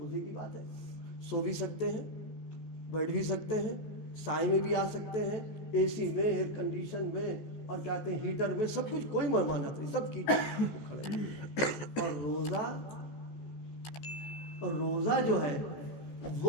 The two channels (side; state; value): right; late; 14 ms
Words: کی بات ہے. سو بھی سکتے ہیں, بیٹھ بھی سکتے ہیں, سائے میں بھی آ سکتے ہیں, اے سی میں, ایئر کنڈیشن میں, اور کہتے ہیں ہیٹر میں, سب کچھ, کوئی ممانعت نہیں, سب کیجیے. اور روزہ جو ہے